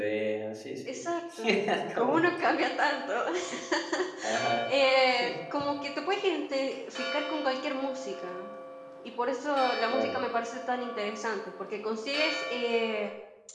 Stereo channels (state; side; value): identical; both; correlation 1.00